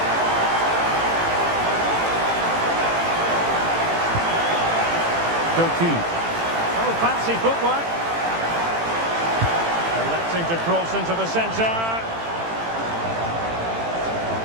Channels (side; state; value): left; late; 18 ms